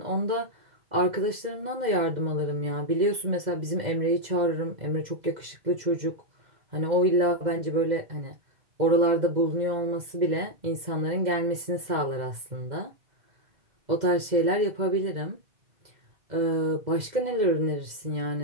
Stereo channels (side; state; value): left; late; 2.0 ms